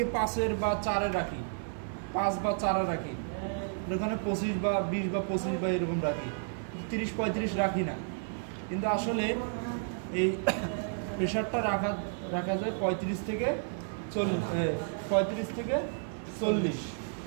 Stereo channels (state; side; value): silent; left; 57 dB below the other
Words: 5-এর বা 4-এ রাখি, 5 বা 4-এ রাখি, ওখানে 25 বা 20 বা 25 বা এরকম রাখি, 30-35 রাখি না। কিন্তু আসলে এই প্রেশারটা রাখা যায় 35 থেকে 40।